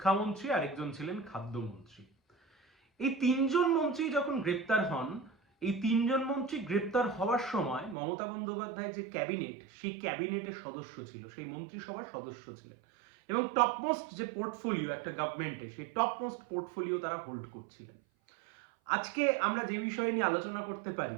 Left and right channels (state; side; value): drops out; left; at 8.0 s